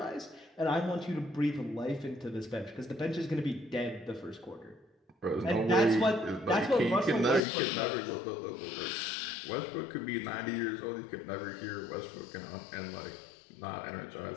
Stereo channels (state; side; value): drops out; right; at 7.5 s